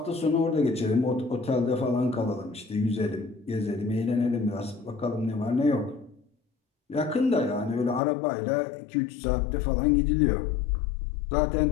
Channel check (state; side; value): drops out; right; at 8.0 s